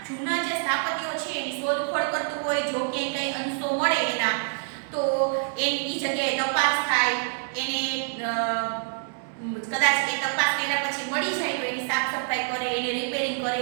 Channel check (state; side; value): silent; left; digital silence